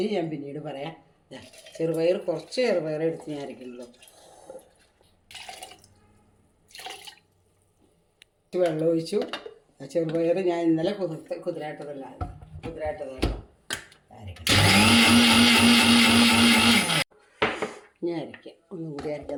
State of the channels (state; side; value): identical; both; correlation 1.00